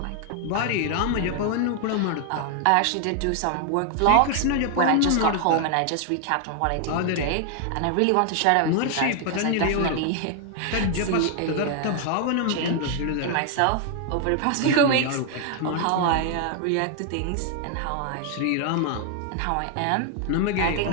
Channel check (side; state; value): both; different; correlation 0.00